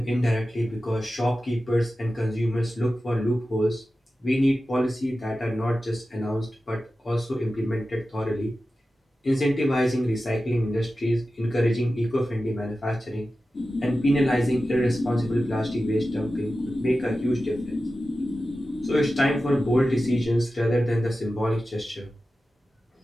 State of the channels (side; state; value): both; normal; correlation 0.94